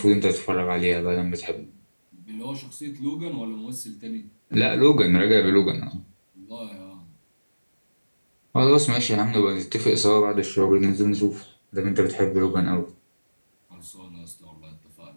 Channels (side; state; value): both; inverted; correlation -1.00